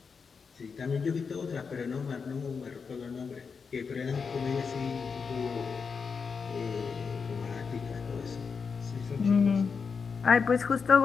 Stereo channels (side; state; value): right; quieter; 5.5 dB